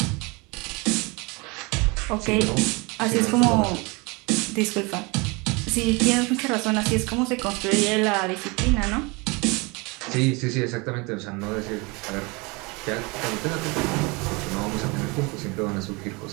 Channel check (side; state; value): left; quieter; 27.2 dB